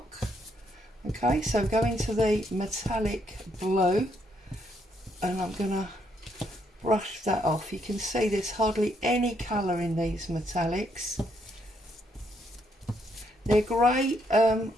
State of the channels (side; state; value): both; normal; correlation 0.74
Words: Okay, so go into the metallic blue, and I'm going to brush that off. You can see there's hardly any colour in these metallics. They're great